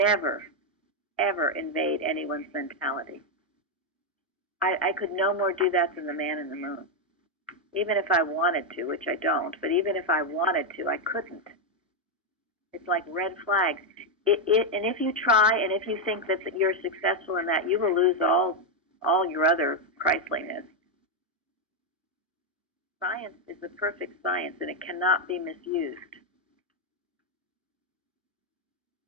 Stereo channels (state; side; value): normal; both; correlation 0.02